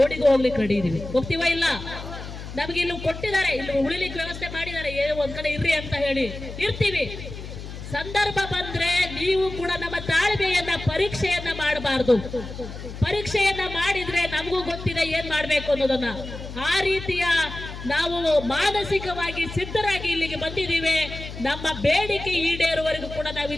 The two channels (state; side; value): noise; left; hum, 10 dB below the sound